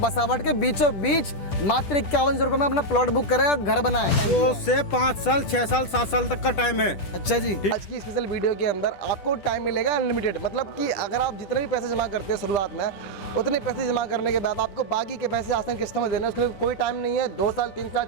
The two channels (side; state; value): right; late; 10 ms